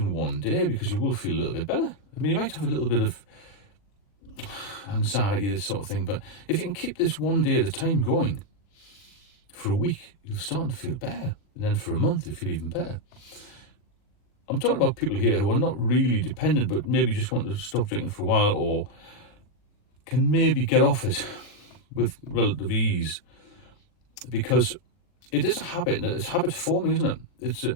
one day, because you will feel a little bit better. I mean, you might have a little bit of anxiety, this sort of thing, but if you can keep this one day at a time going for a week, you'll start to feel better. And then for a month, you'll feel even better. I'm talking about people here who are not really dependent, but maybe just want to stop drinking for a while, or can maybe get off it with relative ease, because it is a habit, and it's habit forming, isn't it?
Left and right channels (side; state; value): right; late; 40 ms